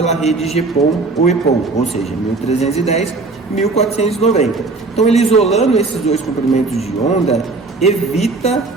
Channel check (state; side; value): quieter; left; 3.7 dB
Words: rede GPON ou EPON, ou seja, 1310 e 1490. Então, ele isolando esses dois comprimentos de onda, evita